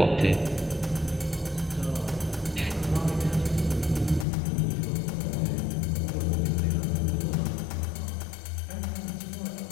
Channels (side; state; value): right; drops out; at 4.2 s